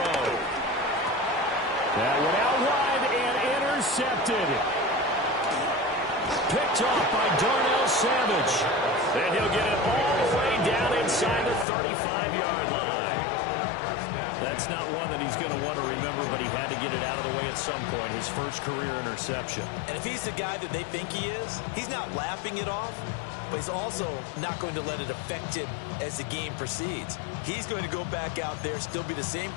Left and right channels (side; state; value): right; drops out; at 11.7 s